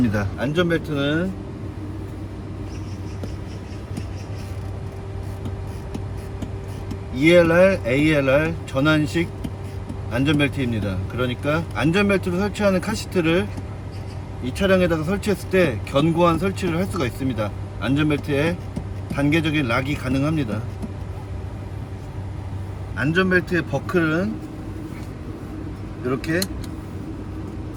안전벨트는 ELR, ALR 전환식 안전벨트입니다. 그러니까 안전벨트로 설치하는 카시트를 이 차량에다가 설치했을 때 견고한 설치를 할 수가 있습니다. 안전벨트에 단계적인 락이 가능합니다. 안전벨트의 버클은 이렇게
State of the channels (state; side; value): identical; both; correlation 1.00